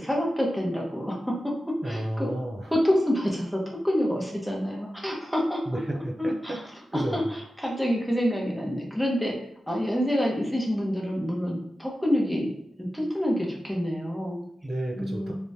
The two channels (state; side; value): normal; both; correlation 0.93